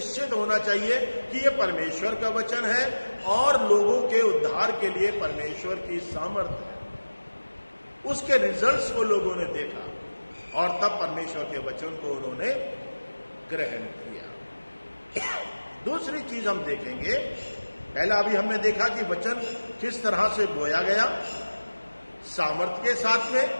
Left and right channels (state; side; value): inverted; both; correlation -1.00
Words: होना चाहिए कि यह परमेश्वर का वचन है और लोगों के उद्धार के लिए परमेश्वर की सामर्थ्य है। उसके रिजल्ट्स को लोगों ने देखा और तब परमेश्वर के वचन को उन्होंने ग्रहण किया। दूसरी चीज हम देखेंगे, पहला अभी हमने देखा कि वचन किस तरह से बोया गया, सामर्थ्य के साथ में,